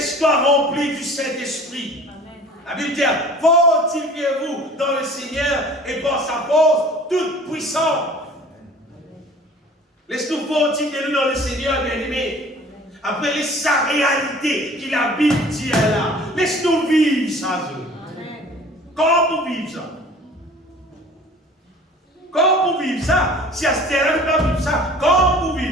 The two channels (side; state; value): both; normal; correlation 0.47